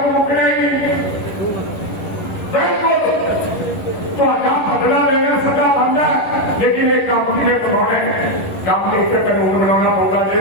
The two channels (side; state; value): right; late; 11 ms